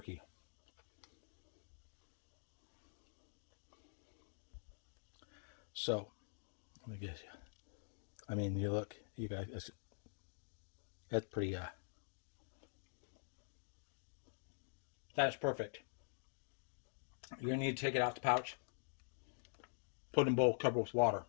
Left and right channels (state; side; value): silent; right; digital silence